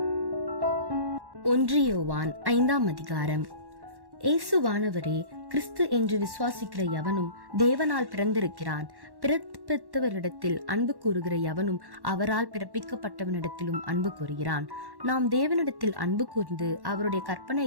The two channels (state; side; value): late; left; 1.1 ms